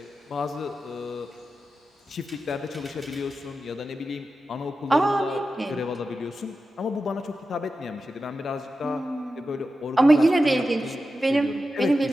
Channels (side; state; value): both; normal; correlation 0.91